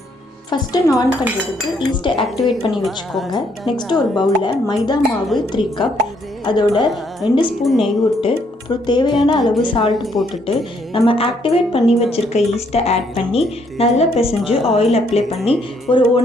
ஃபஸ்ட்டு நான் பண்ணுறதுக்கு ஈஸ்ட்டை ஆக்டிவேட் பண்ணி வச்சுக்கோங்க. நெக்ஸ்ட்டு ஒரு பவுலில் மைதா மாவு 3 கப், அதோட 2 ஸ்பூன் நெய் விட்டு அப்புறம் தேவையான அளவு சால்ட் போட்டுட்டு நம்ம ஆக்டிவேட் பண்ணி வச்சுருக்க ஈஸ்ட்டை ஆட் பண்ணி நல்லா பிசைஞ்சு ஆயில் அப்ளை பண்ணி ஒரு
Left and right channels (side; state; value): both; normal; correlation 0.70